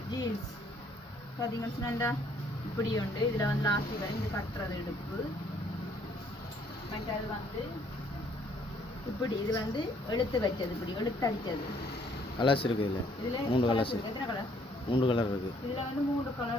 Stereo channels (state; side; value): normal; both; correlation 0.64